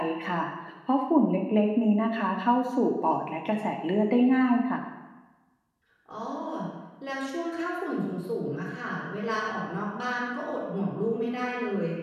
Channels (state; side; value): identical; both; correlation 1.00